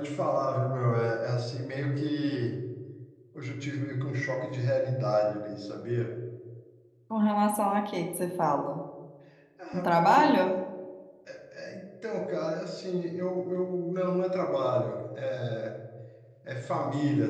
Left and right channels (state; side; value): identical; both; correlation 1.00